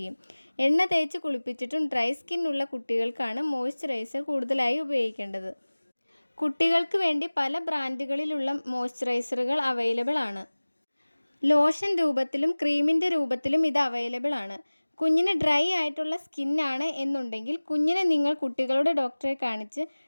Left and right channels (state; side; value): inverted; both; correlation -1.00